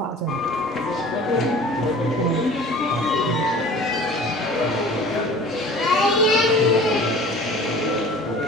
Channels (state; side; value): normal; both; correlation 0.44